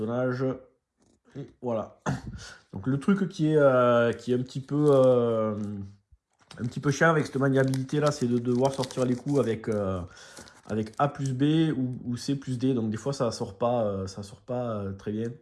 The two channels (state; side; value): identical; both; correlation 1.00